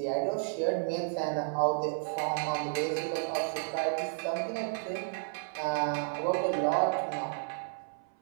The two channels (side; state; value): left; silent; 56 dB below the other